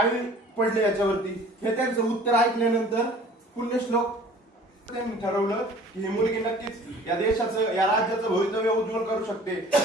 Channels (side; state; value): both; normal; correlation 0.49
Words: पडले याच्यावरती। हे त्यांचं उत्तर ऐकल्यानंतर पुण्यश्लोक त्यांनी ठरवलं की ही मुलगी नक्कीच या देशाचं या राज्याचं भवितव्य उज्ज्वल करू शकते।